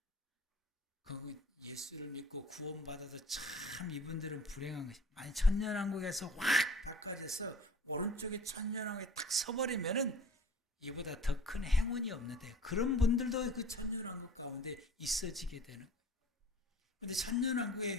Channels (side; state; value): both; normal; correlation 0.46